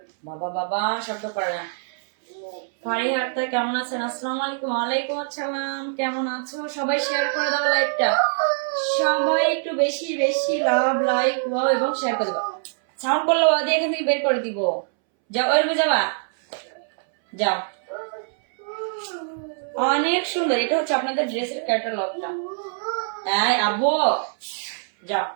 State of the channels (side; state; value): left; silent; 63 dB below the other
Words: বাবা বাবা, শব্দ করে না। ফারিহা আক্তার কেমন আছেন? আসসালামু আলাইকুম। ওয়ালাইকুম আসসালাম, কেমন আছো? সবাই শেয়ার করে দাও লাইভটা, সবাই একটু বেশি বেশি লাভ লাইক ওয়াও এবং শেয়ার করে দাও। সাউন্ড করলে ওয়া দিয়ে এখান থেকে বের করে দিব। যাও, ওই রুমে যাবা, যাও। অনেক সুন্দর, এটা হচ্ছে আপনাদের ড্রেসের ক্যাটালগটা। এই আব্বু, যাও